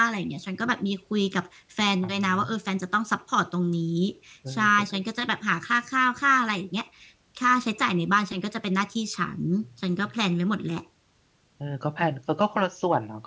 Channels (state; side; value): identical; both; correlation 1.00